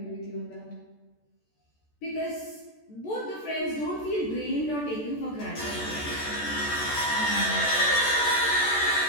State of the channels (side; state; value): right; late; 14 ms